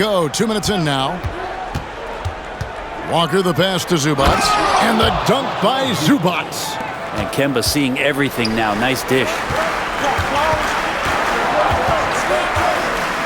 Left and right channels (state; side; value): identical; both; correlation 1.00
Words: 2 minutes in now. Walker the pass to Zubac. And the dunk by Zubac. And Kemba seeing everything now. Nice dish.